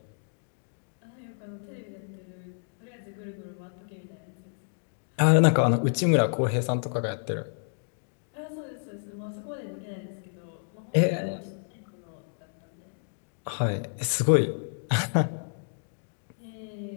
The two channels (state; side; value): silent; right; digital silence